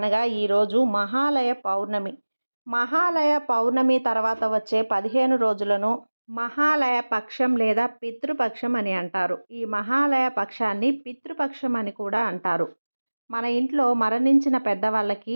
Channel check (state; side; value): inverted; both; correlation -1.00